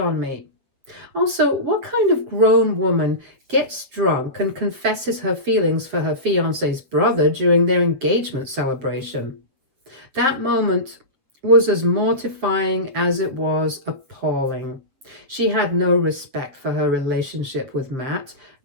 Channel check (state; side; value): late; left; 7.7 ms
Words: me. Also, what kind of grown woman gets drunk and confesses her feelings for her fiancé's brother during their engagement celebration? That moment was as mortifying as it was appalling. She had no respect for her relationship with Matt,